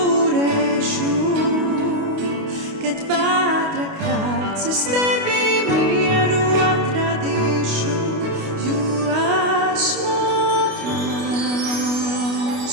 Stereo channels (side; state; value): left; late; 28 ms